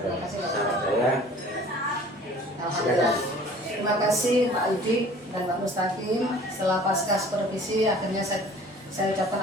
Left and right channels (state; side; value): normal; both; correlation 0.49